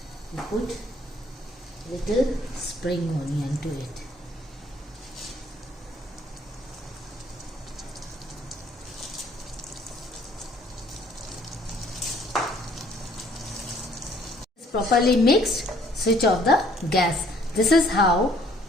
we put little spring onion to it. Properly mixed, switch off the gas. This is how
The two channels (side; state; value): both; normal; correlation 0.61